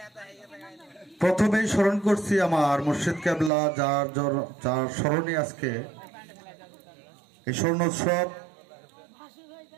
প্রথমেই স্মরণ করছি আমার মুর্শিদ কেবলা, যার স্মরণে আজকে এই স্বর্ণোৎসব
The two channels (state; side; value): drops out; left; at 3.5 s